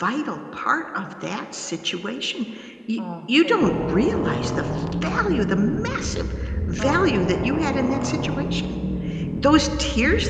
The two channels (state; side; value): identical; both; correlation 1.00